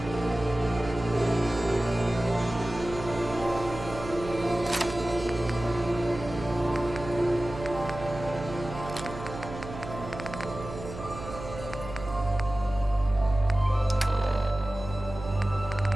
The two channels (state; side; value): noise; right; hum, 10 dB below the sound